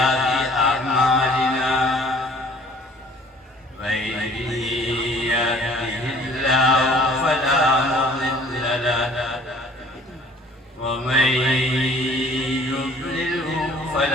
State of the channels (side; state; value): both; normal; correlation 0.53